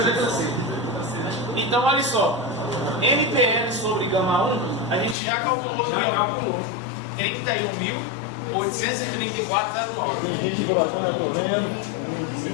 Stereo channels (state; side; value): drops out; right; at 5.2 s